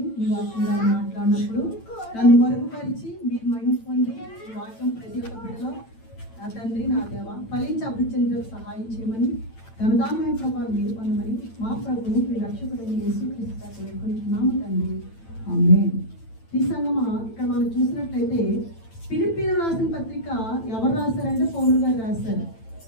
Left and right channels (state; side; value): late; right; 8.9 ms